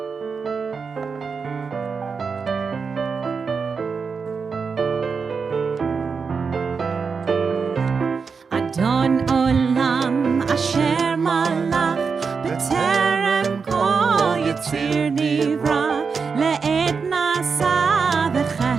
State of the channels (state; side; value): quieter; left; 5.3 dB